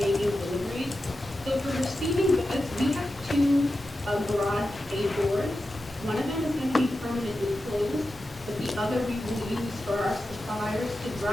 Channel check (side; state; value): both; normal; correlation 0.91